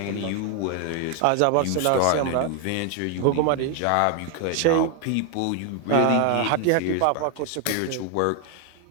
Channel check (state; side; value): different; both; correlation 0.00